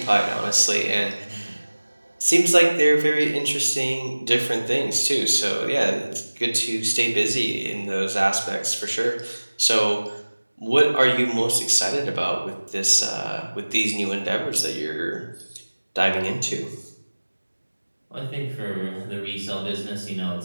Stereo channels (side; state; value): both; inverted; correlation -1.00